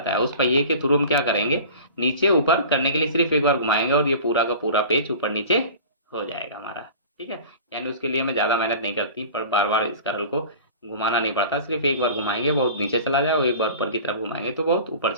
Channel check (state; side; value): inverted; both; correlation -0.40